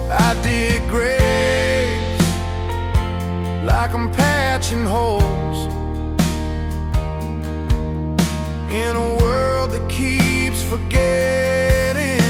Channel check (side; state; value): both; identical; correlation 1.00